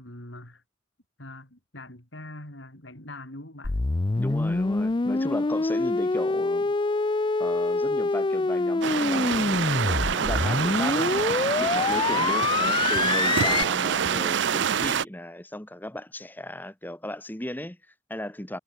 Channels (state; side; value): normal; both; correlation 0.33